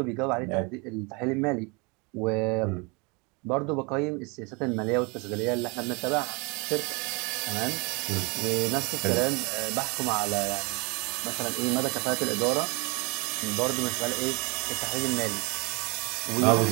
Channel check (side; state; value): left; quieter; 29.7 dB